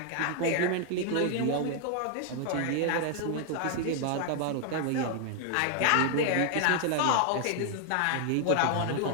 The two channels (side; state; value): both; different; correlation 0.00